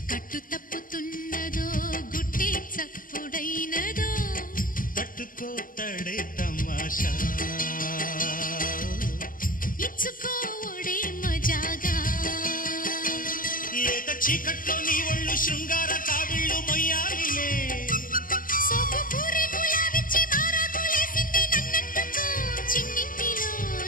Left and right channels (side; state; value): right; late; 0.40 ms